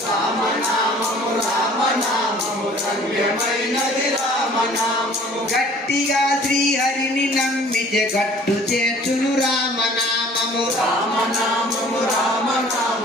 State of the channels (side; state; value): both; normal; correlation 0.51